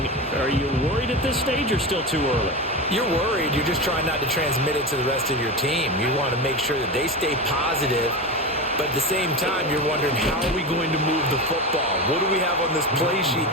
Are you worried at this stage or still too early? You're worried. You're just trying not to transmit it to the rest of your team. You want to make sure that they stay positive, but at the same time, you're wondering, how are we going to move the football? What do we have on this play sheet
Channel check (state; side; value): normal; both; correlation 0.22